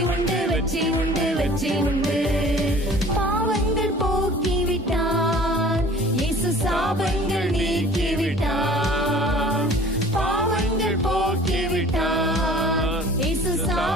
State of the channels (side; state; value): both; normal; correlation 0.48